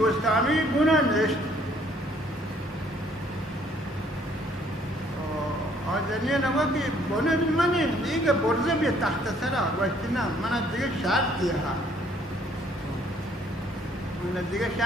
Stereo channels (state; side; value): normal; both; correlation 0.63